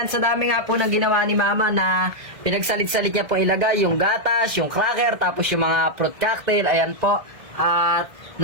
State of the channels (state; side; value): late; left; 1.7 ms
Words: sa dami nga po ng ginawa ni Mama na pinagsalit-salit niya po ilagay yung gatas, yung cracker, tapos yung mga fruit cocktail, ayan po. At